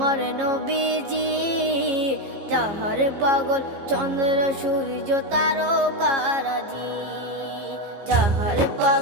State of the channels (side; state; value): left; late; 15 ms